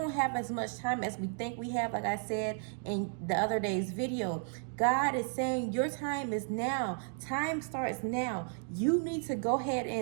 have as much time as we think we have, like I said in the other day's video. God is saying your time is now. Time starts now. You need to go ahead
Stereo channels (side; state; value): left; silent; 55 dB below the other